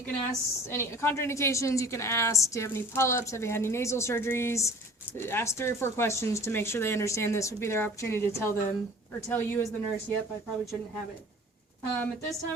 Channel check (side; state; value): both; normal; correlation 0.45